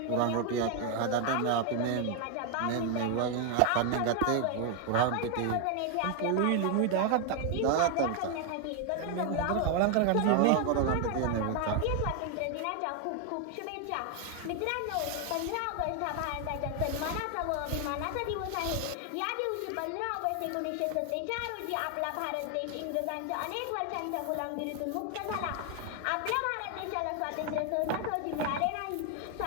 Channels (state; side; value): different; both; correlation 0.00